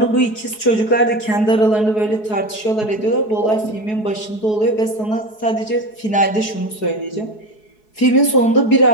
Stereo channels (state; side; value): late; right; 4.7 ms